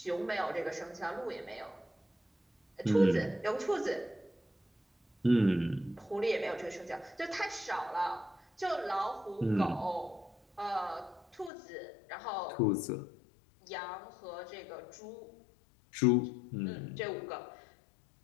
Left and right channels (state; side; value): drops out; right; at 11.5 s